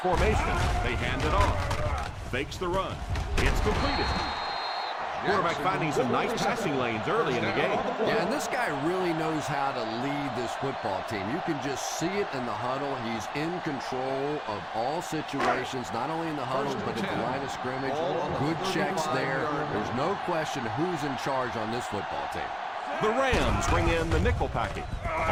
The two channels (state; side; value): identical; both; correlation 1.00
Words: They hand it off. Fakes the run. It's completed. Quarterback finding some nice passing lanes early in the game. Yeah, and this guy really knows how to lead this football team. You can just see it in the huddle. He's in control of all situations, not only in the huddle, but at the line of scrimmage. Good checks there. There's no question who's in charge on this football team. The Rams bring in the nickel package.